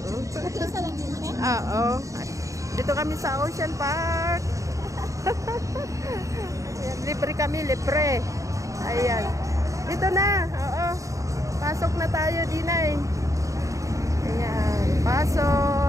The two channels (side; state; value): left; late; 0.16 ms